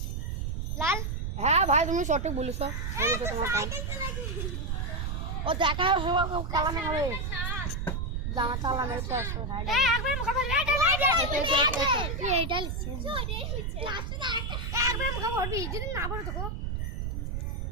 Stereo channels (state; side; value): noise; right; rumble, 2 dB below the sound